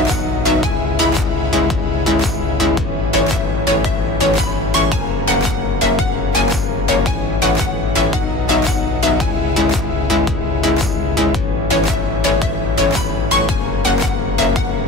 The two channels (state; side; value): noise; left; hum, 4 dB below the sound